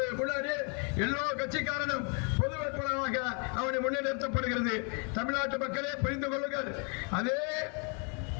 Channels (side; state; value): right; quieter; 37.4 dB